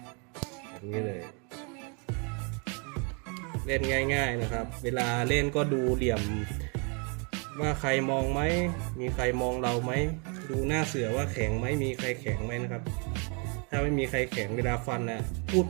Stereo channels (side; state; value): left; quieter; 35.8 dB